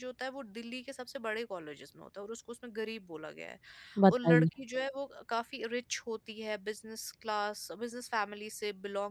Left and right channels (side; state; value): both; identical; correlation 1.00